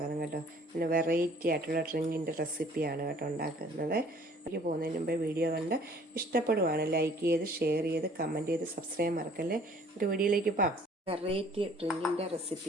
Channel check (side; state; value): both; normal; correlation 0.55